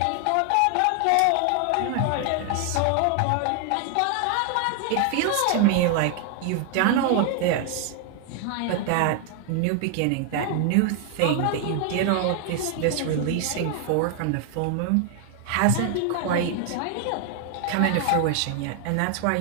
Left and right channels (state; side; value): different; both; correlation 0.00